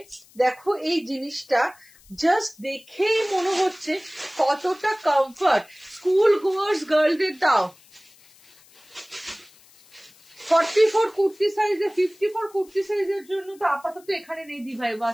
দেখো এই জিনিসটা জাস্ট দেখেই মনে হচ্ছে কতটা কমফর্ট। স্কুল গোয়ার্স গার্লদের দাও। 44 কুর্তি সাইজে, 54 কুর্তি সাইজের জন্য তো আপাতত এখানে নেই দি ভাই,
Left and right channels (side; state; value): left; noise; hiss, 27 dB below the sound